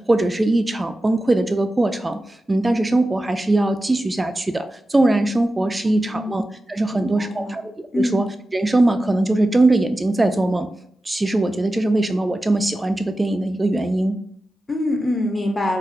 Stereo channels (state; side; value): normal; both; correlation 0.93